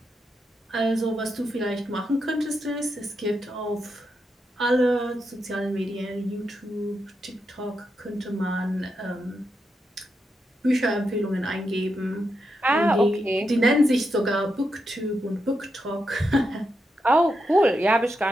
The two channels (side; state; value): both; normal; correlation 0.84